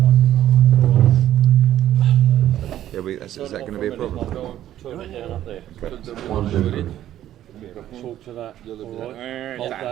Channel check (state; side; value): quieter; left; 12.3 dB